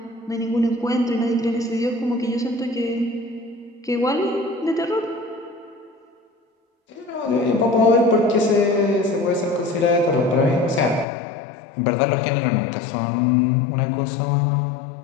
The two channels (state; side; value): drops out; right; at 11.1 s